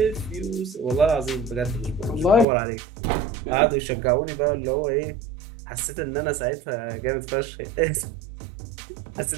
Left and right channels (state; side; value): drops out; left; at 2.5 s